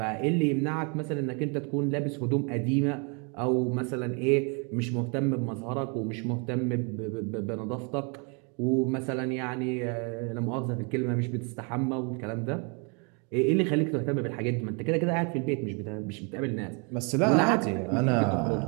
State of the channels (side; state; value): left; quieter; 35.0 dB